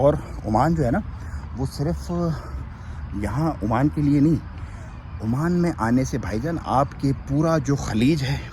ओमान जो है ना, वो सिर्फ यहाँ ओमान के लिए नहीं, ओमान में आने से भाईजान आपके पूरा जो खलीज है,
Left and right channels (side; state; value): both; identical; correlation 1.00